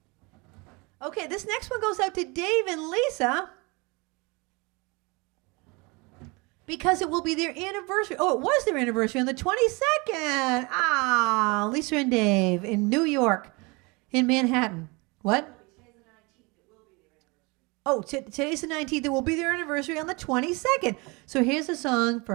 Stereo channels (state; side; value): quieter; left; 27.3 dB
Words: Okay, this next one goes out to Dave and Lisa because it will be their anniversary. Oh, it was their anniversary on the 22nd. Ah, Lisa and Dave in New York, in Manhattan. What? Oh, today's the 19th. It will be their anniversary on the 22nd. So here's a song